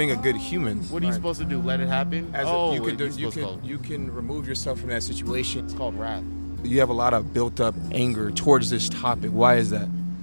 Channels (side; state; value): both; inverted; correlation -1.00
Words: a good human. What are you supposed to do? Let it happen? You can remove yourself from that situation. It's called wrath. You have a lot of built up anger towards this topic. Why is that?